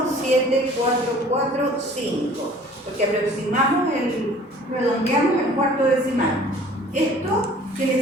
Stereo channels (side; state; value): both; normal; correlation 0.50